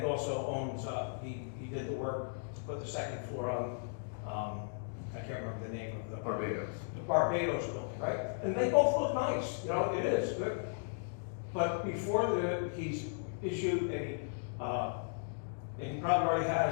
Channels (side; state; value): right; silent; digital silence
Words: also owns, he did the work to put the second floor on, I can't remember the name of the. Barbados. The Barbados building, right? And they both look nice, you know, it is good. But before he's issued and he probably already